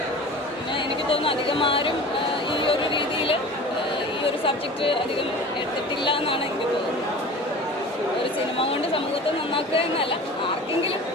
പിന്നെ എനിക്ക് തോന്നുന്നു അധികം ആരും ഈ ഒരു രീതിയിൽ ഈ ഒരു സബ്ജക്റ്റ് അധികം എടുത്തിട്ടില്ല എന്നാണ് എനിക്ക് തോന്നുന്നത്. ഒരു സിനിമ കൊണ്ട് സമൂഹത്തെ നന്നാക്കുക എന്നല്ല, ആർക്കെങ്കിലും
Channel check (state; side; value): normal; both; correlation 0.38